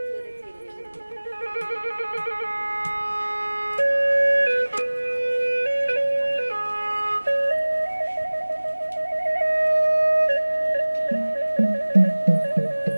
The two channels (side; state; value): both; inverted; correlation -1.00